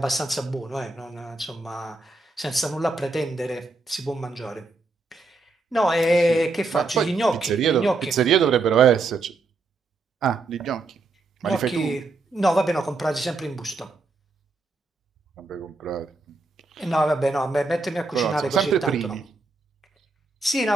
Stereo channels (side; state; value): left; quieter; 3.5 dB